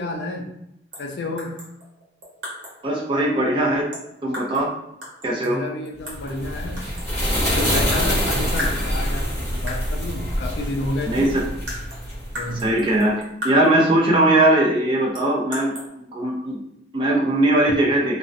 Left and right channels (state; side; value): normal; both; correlation 0.45